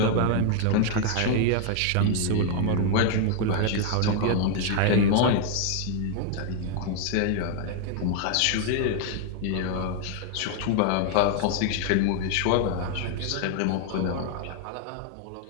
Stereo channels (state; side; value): different; both; correlation 0.00